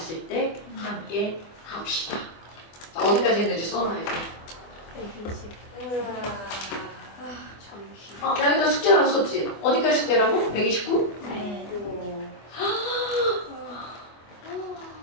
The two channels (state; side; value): late; right; 24 ms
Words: 때 함께 합시다. 자, 어디까지 했는지 써놔야 돼. 120. 나 여기다 숙제 하나 썼지? 어디까지 숙제라고? 129? 네.